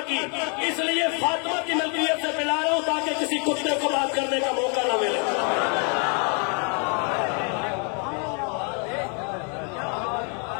کی، اس لیے فاطمہ کی ملکیت سے پلا رہا ہوں تاکہ کسی کتے کو بات کرنے کا موقع نہ ملے۔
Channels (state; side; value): quieter; right; 38.9 dB